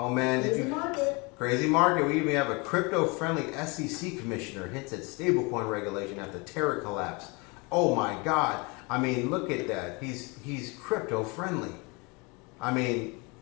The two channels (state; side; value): quieter; right; 28.6 dB